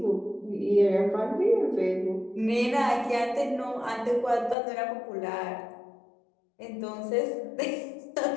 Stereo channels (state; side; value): drops out; right; at 4.5 s